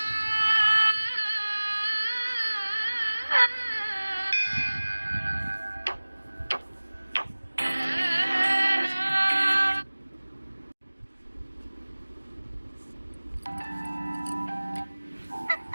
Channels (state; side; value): inverted; both; correlation -1.00